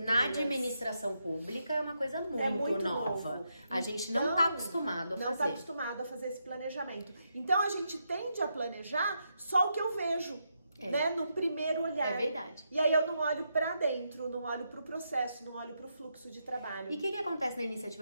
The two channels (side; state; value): both; inverted; correlation -0.82